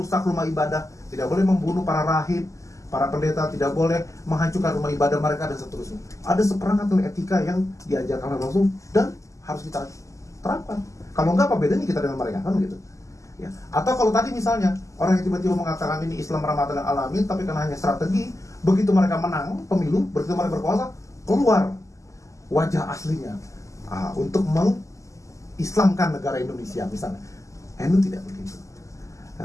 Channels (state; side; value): late; right; 0.16 ms